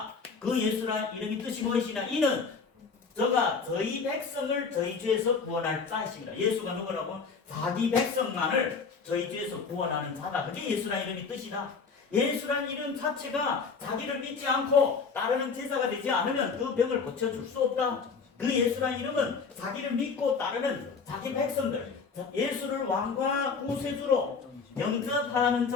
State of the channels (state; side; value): quieter; right; 5.2 dB